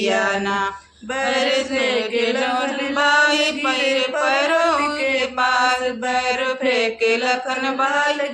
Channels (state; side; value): identical; both; correlation 1.00